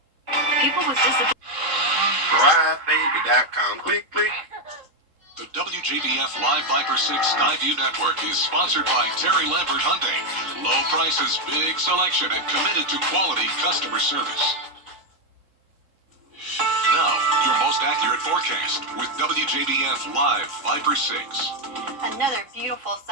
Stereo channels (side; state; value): left; late; 3.7 ms